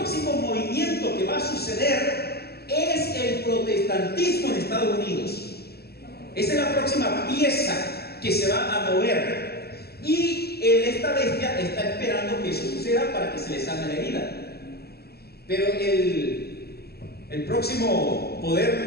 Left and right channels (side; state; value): right; late; 0.46 ms